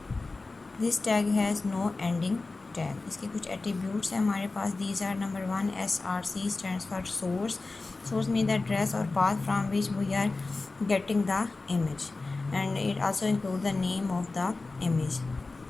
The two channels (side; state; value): right; quieter; 3.5 dB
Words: This tag has no ending tag. इसके कुछ attributes हैं हमारे पास. These are number 1 SRC stands for source. Source mean the address और path from which we are getting the image and it also include the name of the image.